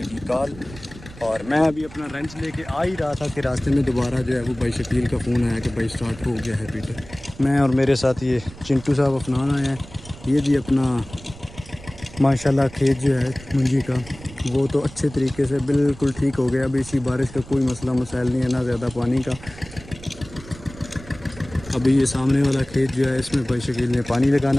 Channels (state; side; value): noise; right; rumble, 18 dB below the sound